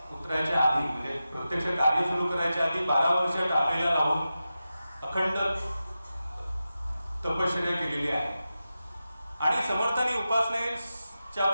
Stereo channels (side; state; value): both; inverted; correlation -0.92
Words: उतरायच्या आधी, म्हणजे प्रत्यक्ष कार्य सुरू करायच्या आधी 12 वर्ष टाकलेला लावून अखंड तपश्चर्या केलेली आहे. आणि समर्थांनी उपासनेच्या